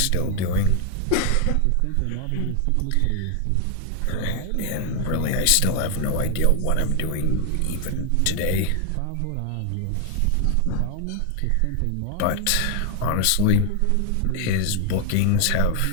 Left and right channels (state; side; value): different; both; correlation 0.00